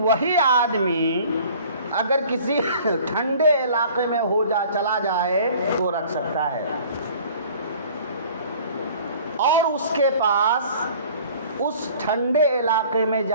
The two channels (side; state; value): both; inverted; correlation -0.49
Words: وہی آدمی اگر کسی ٹھنڈے علاقے میں چلا جائے تو رکھ سکتا ہے، اور اس کے پاس اس ٹھنڈے علاقے میں